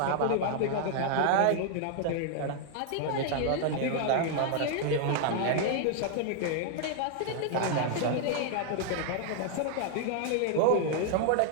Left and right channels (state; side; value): different; both; correlation 0.00